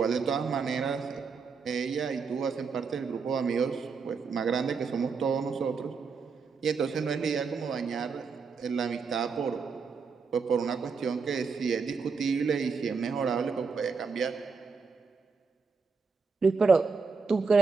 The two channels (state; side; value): quieter; left; 5.1 dB